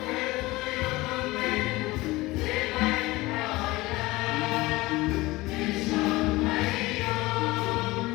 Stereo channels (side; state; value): right; quieter; 20.4 dB